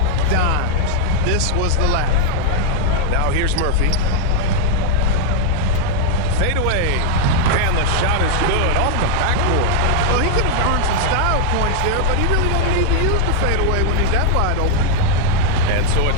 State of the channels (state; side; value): different; both; correlation 0.00